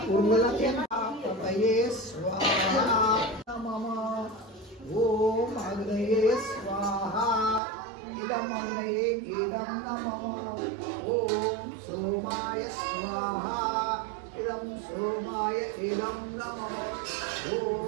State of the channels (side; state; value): left; drops out; at 7.6 s